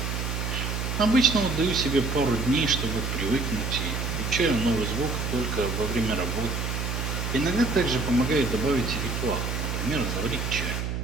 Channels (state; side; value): noise; right; hum, 2 dB below the sound